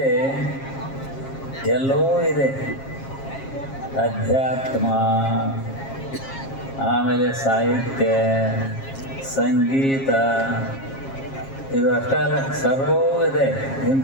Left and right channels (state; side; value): late; right; 7.4 ms